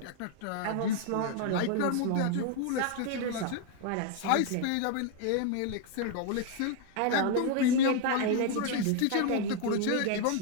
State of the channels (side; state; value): both; different; correlation 0.00